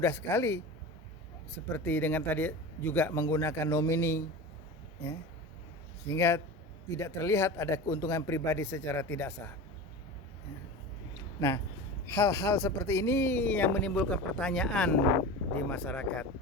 sekali. Seperti dengan tadi juga menggunakan nomini, ya, sehingga tidak terlihat ada keuntungan pribadi secara tidak sah. Nah, hal-hal seperti ini yang menimbulkan pertanyaan di masyarakat.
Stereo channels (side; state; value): both; normal; correlation 0.30